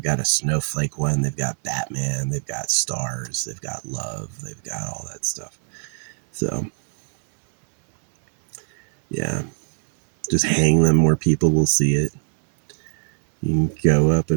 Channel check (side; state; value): left; silent; digital silence